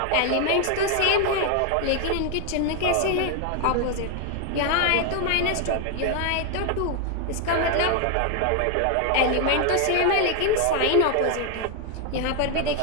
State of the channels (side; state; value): both; different; correlation 0.00